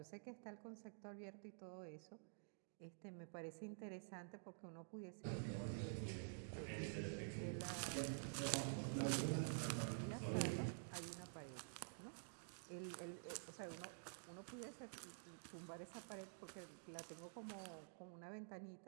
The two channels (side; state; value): left; silent; digital silence